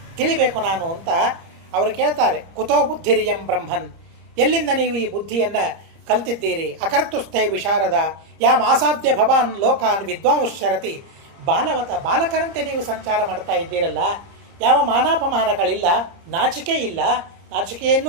ತಿಳಿಬೇಕು ನಾನು ಅಂತ ಅವರು ಕೇಳ್ತಾರೆ. ಕುತೋ ಬುದ್ಧಿರಿಯಂ ಬ್ರಹ್ಮನ್, ಎಲ್ಲಿಂದ ನೀವು ಈ ಬುದ್ಧಿಯನ್ನು ಕಲ್ತಿದ್ದೀರಿ? ಅಕರ್ತುಸ್ಥೈ ವಿಶಾರದ ಯಾಮ್ ಆಸಾಧ್ಯ ಭವಾನ್ ಲೋಕಾನ್ ವಿದ್ವಾಂಶರತಿ. ಬಾಲವತ, ಬಾಲಕರಂತೆ ನೀವು ಸಂಚಾರ ಮಾಡ್ತಾ ಇದ್ದೀರಲ್ಲ, ಯಾವ ಮಾನಾಪಮಾನಗಳಿಲ್ಲ, ನಾಚಿಕೆ ಇಲ್ಲ,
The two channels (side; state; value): left; late; 30 ms